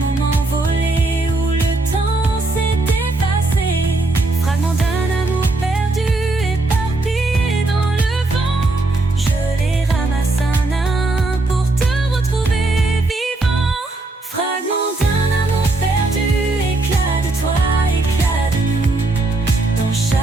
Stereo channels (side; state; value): left; quieter; 3.1 dB